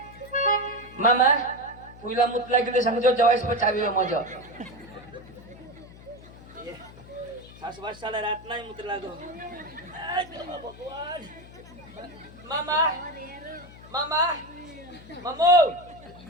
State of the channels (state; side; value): noise; left; hum, 19 dB below the sound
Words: मामा पुईला मुतला गेले सांगतो जवाईस पण चावी मजा सासवासाला रात नाही मुत लागो भगवान मामा मामा मामो